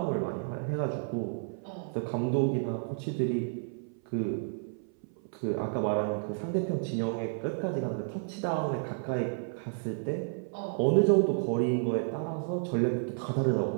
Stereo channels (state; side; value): silent; left; 57 dB below the other